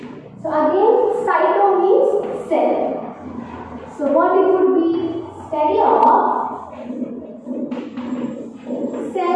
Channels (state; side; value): identical; both; correlation 1.00